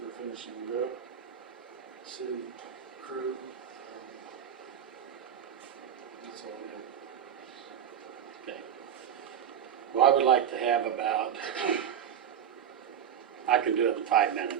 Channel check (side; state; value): left; quieter; 8.8 dB